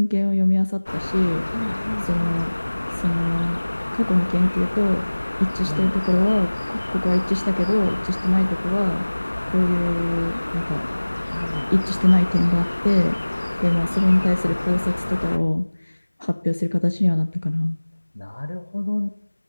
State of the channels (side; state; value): both; inverted; correlation -1.00